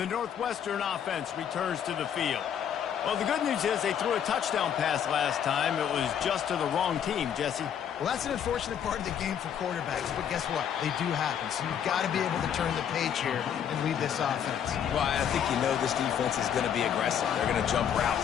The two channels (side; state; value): right; quieter; 8.8 dB